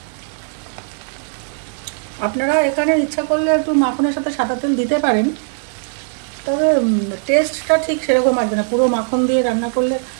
আপনারা এখানে ইচ্ছা করলে একটু মাখনের সাথে সাদা তেল দিতে পারেন, তবে টেস্টটা ঠিক সেরকম আসবে না। পুরো মাখন দিয়ে রান্না করলে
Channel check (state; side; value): silent; left; digital silence